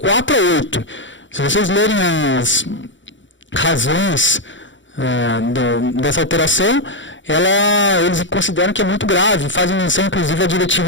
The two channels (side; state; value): right; late; 0.55 ms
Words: a 8. Se vocês lerem as razões dessa alteração, eles consideram que é muito grave, fazem menção inclusive à